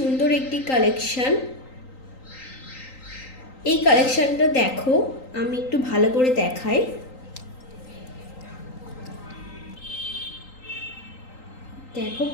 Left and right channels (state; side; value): late; right; 3.9 ms